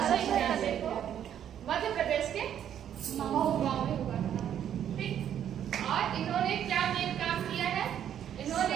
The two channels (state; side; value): quieter; left; 9.8 dB